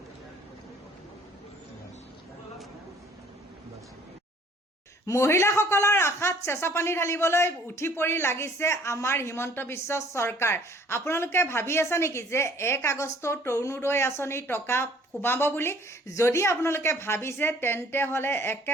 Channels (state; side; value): normal; both; correlation 0.56